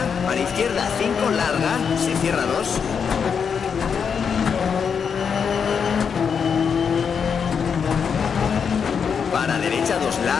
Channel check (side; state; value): right; quieter; 6.6 dB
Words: para izquierda 5 larga, se cierra 2. Para derecha 2